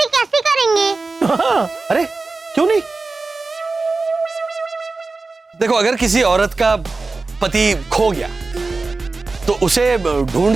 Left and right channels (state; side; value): quieter; left; 3.7 dB